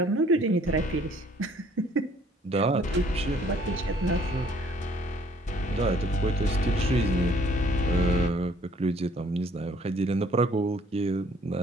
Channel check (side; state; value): both; normal; correlation 0.60